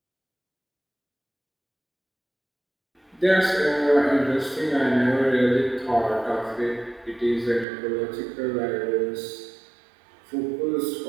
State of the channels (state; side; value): drops out; left; at 7.7 s